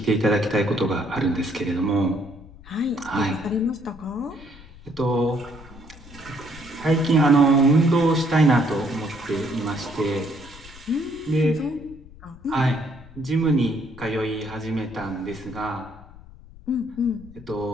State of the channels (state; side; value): noise; left; rumble, 19 dB below the sound